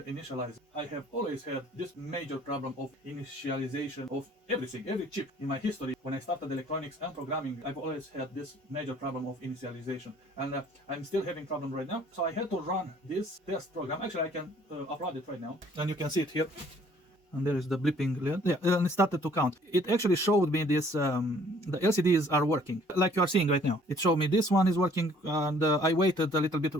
I have always had this major problem of initialization of everything, every chip in my history. When I started electronics and programming, I've always had this major problem of initialization. And I'm still having problem right now. So I had to run this test program. Actually, I can upload it right now. And you can see it here. And there is the blipping, yeah, and it started to count. It actually showed me this, the LCDs are working, like you are seeing right now. It showed me this one is working, and I waited a little bit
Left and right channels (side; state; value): both; normal; correlation 0.58